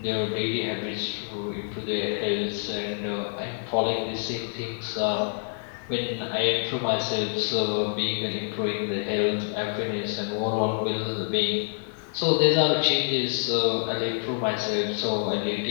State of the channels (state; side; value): silent; right; 60 dB below the other